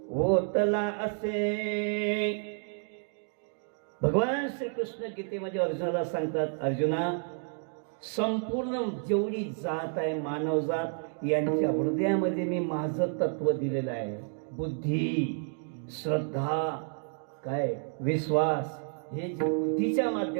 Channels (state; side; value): silent; left; 58 dB below the other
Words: होतला असे. भगवान श्रीकृष्ण गीतेमध्ये अर्जुनाला सांगतात, अर्जुना संपूर्ण जेवढी जात आहे, मानव जात, यांच्या हृदयामध्ये मी माझं तत्व दिलेलं आहे. बुद्धी, श्रद्धा, काय विश्वास, हे जे बुद्धीच्या